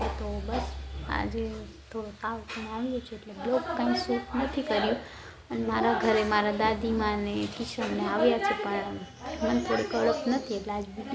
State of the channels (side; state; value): both; identical; correlation 1.00